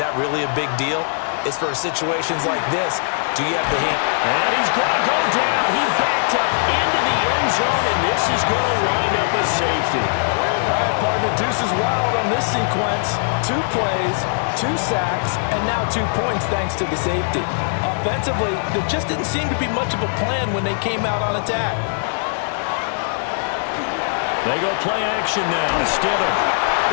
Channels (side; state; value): right; silent; digital silence